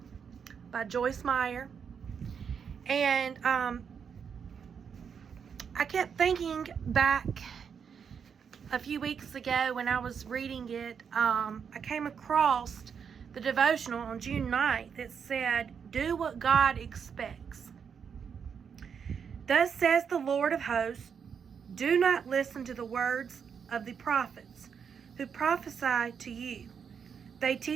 by Joyce Meyer, and I kept thinking back a few weeks ago when I was reading it. I came across the devotional on June 9th that said, "Do what God expects. Thus says the Lord of hosts, do not listen to the words of the prophets who prophesy to you. They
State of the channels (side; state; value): left; quieter; 6.9 dB